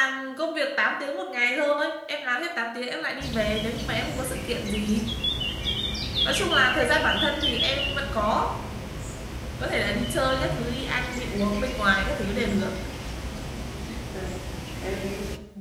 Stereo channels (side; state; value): both; identical; correlation 1.00